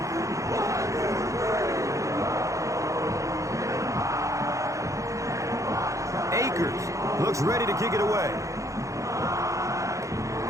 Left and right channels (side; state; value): left; late; 0.15 ms